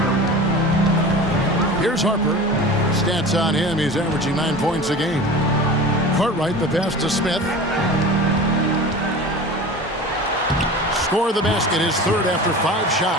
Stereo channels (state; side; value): normal; both; correlation 0.35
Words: Here's Harper. Stats on him, he's averaging 9 points a game. Cartwright, the pass to Smith. Score the basket, his third after 5